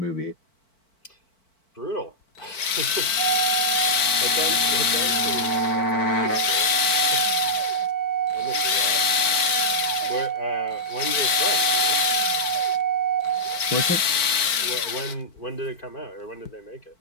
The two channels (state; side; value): late; right; 4.5 ms